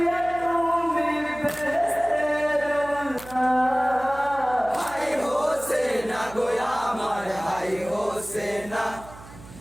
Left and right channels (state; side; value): noise; right; hum, 18 dB below the sound